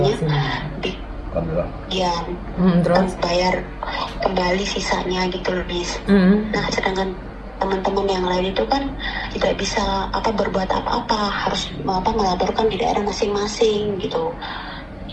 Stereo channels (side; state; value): both; identical; correlation 1.00